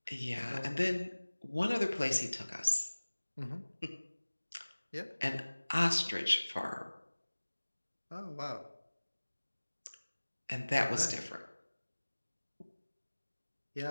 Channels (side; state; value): both; inverted; correlation -1.00